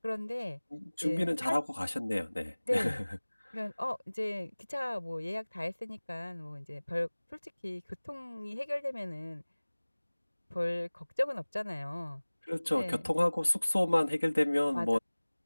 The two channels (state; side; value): inverted; both; correlation -1.00